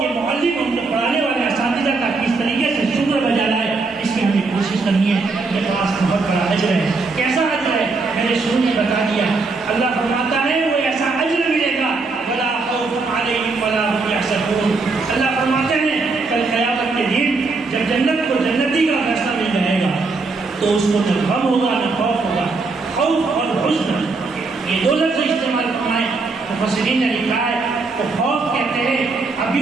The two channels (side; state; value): left; quieter; 3.9 dB